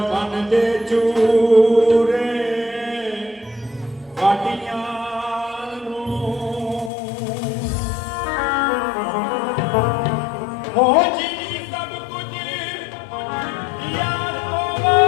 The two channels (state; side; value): drops out; right; at 6.9 s